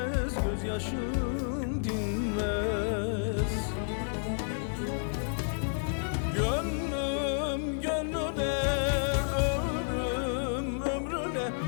gözyaşım dinmez. Gönlüm gönlüne, ömrüm ömrüne,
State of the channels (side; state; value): right; silent; digital silence